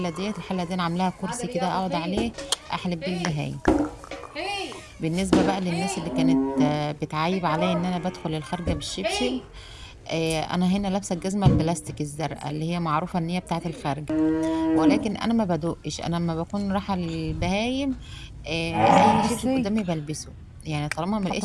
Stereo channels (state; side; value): identical; both; correlation 1.00